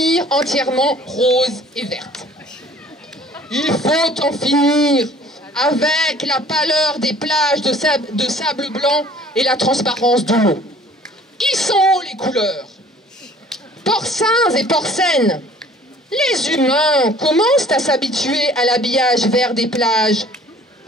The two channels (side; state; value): both; normal; correlation 0.52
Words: entièrement rose et verte. Il faut en finir avec la pâleur des plages de sable blanc et la transparence de l'eau. Qui sont les couleurs? Porcins et porcines, les humains commencent à s'habituer à l'habillage vert des plages.